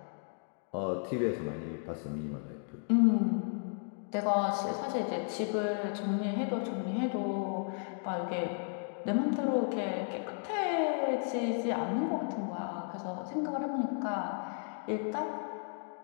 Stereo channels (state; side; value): silent; right; 55 dB below the other